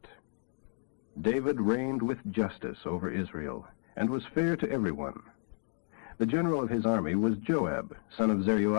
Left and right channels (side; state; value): right; silent; 56 dB below the other